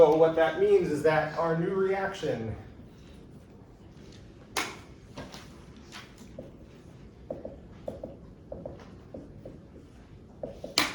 what that means is that our new reaction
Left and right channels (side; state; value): both; identical; correlation 1.00